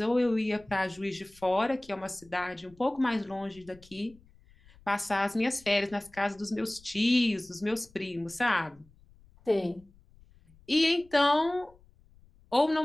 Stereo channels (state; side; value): noise; left; rumble, 27 dB below the sound